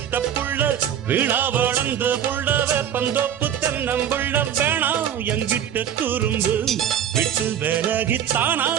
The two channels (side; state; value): left; quieter; 9.6 dB